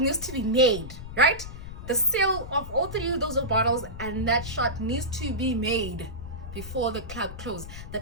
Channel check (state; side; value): noise; left; rumble, 11 dB below the sound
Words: to be made, right? The sale of all 3 of those bottles and that shot needs to be made before the club closes. The